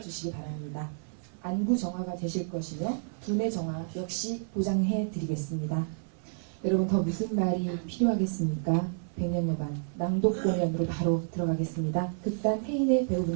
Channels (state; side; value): silent; left; 58 dB below the other